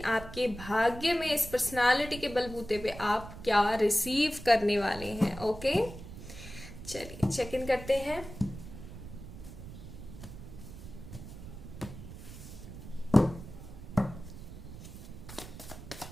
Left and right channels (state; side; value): noise; right; rumble, 13 dB below the sound